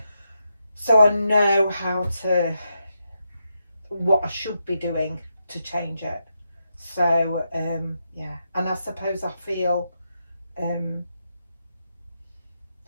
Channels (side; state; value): both; inverted; correlation -0.84